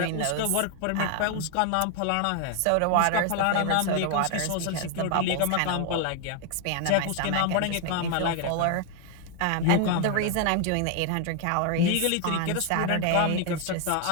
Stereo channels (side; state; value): both; different; correlation 0.00